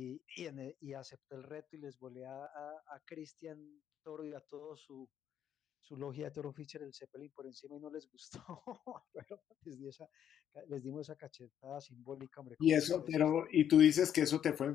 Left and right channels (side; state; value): right; quieter; 9.5 dB